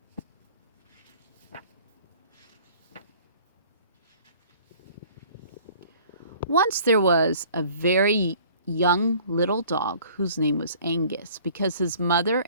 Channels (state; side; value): inverted; both; correlation -0.52